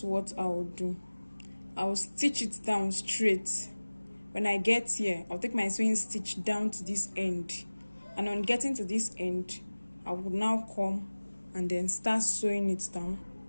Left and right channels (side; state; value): both; inverted; correlation -1.00